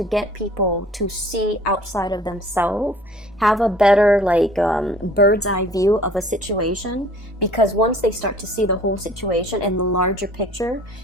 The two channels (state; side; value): normal; both; correlation 0.51